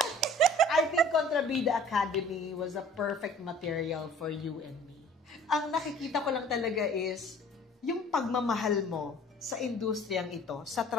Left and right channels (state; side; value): normal; both; correlation 0.50